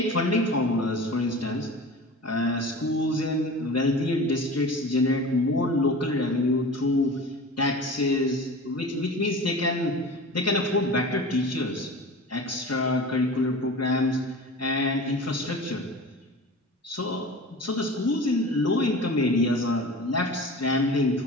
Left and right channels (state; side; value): normal; both; correlation 0.36